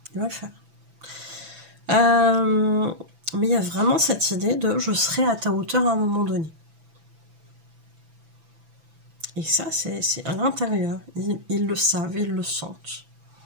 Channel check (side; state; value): left; late; 6.0 ms